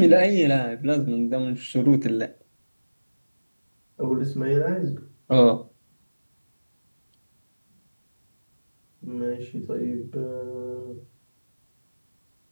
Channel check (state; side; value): inverted; both; correlation -1.00